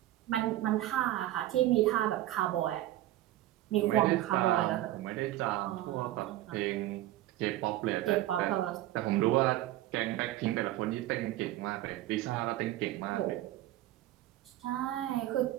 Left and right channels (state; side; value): quieter; left; 15.0 dB